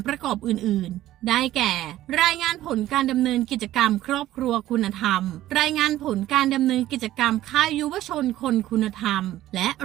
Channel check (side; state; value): left; quieter; 14.3 dB